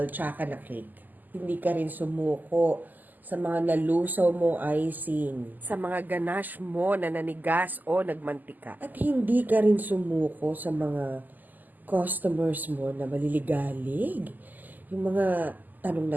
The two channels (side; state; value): left; late; 0.084 ms